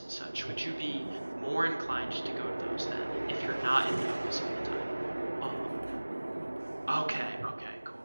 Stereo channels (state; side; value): inverted; both; correlation -1.00